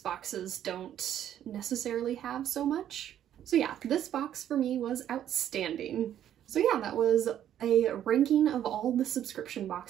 boxes don't necessarily have so much. So yeah, this box for me was outstanding. So yeah, that was a ranking of all the subscription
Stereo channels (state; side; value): quieter; left; 10.8 dB